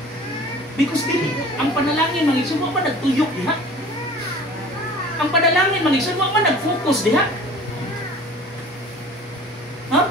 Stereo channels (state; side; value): normal; both; correlation 0.44